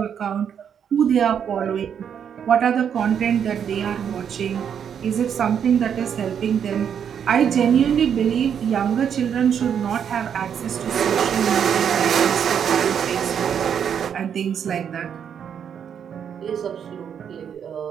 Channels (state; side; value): quieter; left; 8.1 dB